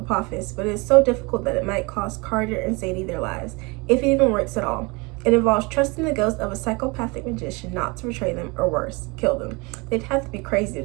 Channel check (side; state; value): left; quieter; 27.3 dB